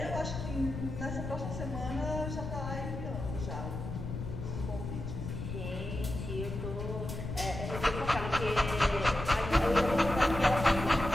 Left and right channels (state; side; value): noise; left; rumble, 6 dB below the sound